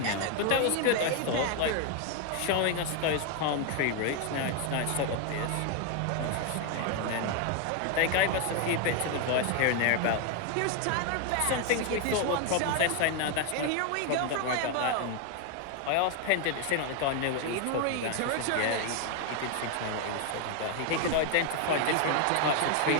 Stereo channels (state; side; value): different; both; correlation 0.01